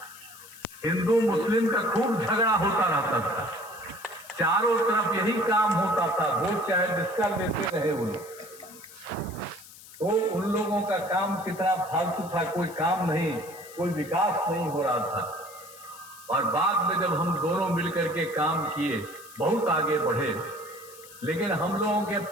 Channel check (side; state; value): left; noise; hiss, 19 dB below the sound